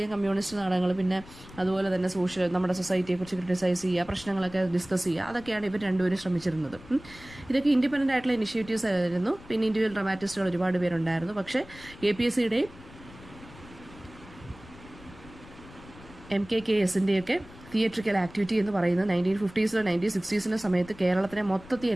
കമ്മ്യൂണിസ്റ്റ് നാടകങ്ങൾ, പിന്നെ അതുപോലെ തന്നെ നമ്മുടെ സൊസൈറ്റിയെക്കുറിച്ച് ക്രിട്ടിസൈസ് ചെയ്യുക, പ്രശ്നങ്ങളൊക്കെ ഡിസ്കസ് ചെയ്യുക, അതൊക്കെയാണ് ഇവർ രണ്ടുപേരും ശ്രമിച്ചിരുന്നത്. ഇതൊക്കെ ഇൻഡിപെൻഡൻ്റ് ആയിട്ടുള്ള ഇനിഷ്യേറ്റീവ്സ് ആയിരുന്നു. പിന്നെ ഇൻഡിവിജ്വൽ ഡ്രാമാറ്റിസ്റ്റുകൾ ഒരുപാട് പേരുണ്ടായിരുന്നു. പക്ഷേ KPSCയുടെയും MKKSൻ്റെയൊക്കെ തിയേറ്ററിക്കൽ ആക്ടിവിറ്റി എന്ന് പറയുന്നത് 1950s 1960s സമയത്ത് കേരളത്തിനെ മൊത്തത്തിൽ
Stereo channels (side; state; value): left; noise; rumble, 19 dB below the sound